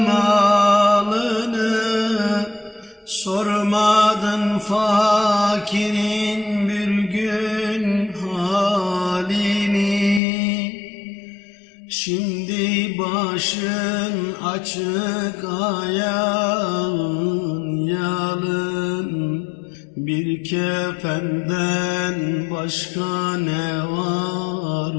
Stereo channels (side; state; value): right; drops out; at 10.2 s